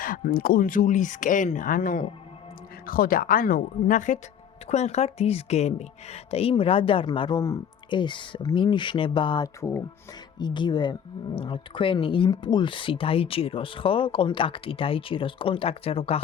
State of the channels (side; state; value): right; quieter; 8.4 dB